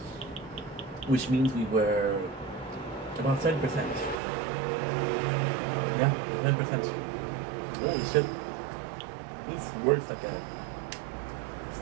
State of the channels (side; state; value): left; drops out; at 4.2 s